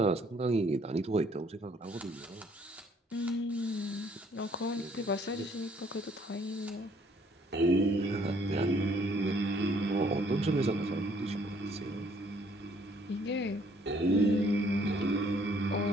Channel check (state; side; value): normal; both; correlation 0.63